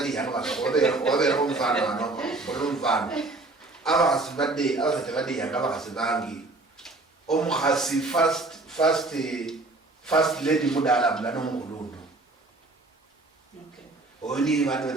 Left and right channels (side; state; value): left; quieter; 3.2 dB